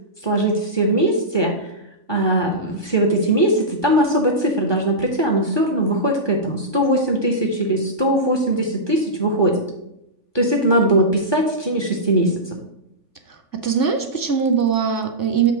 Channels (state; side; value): late; right; 3.5 ms